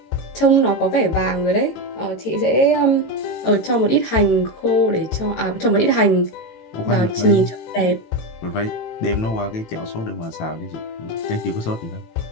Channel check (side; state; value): right; late; 18 ms